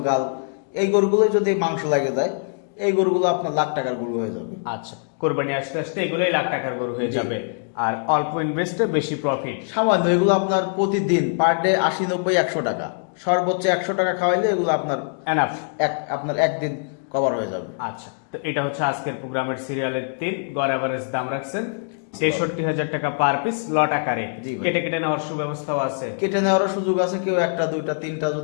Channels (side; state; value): right; silent; digital silence